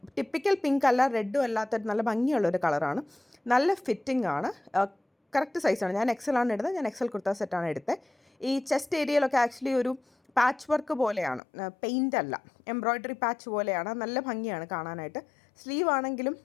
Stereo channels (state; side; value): drops out; right; at 11.4 s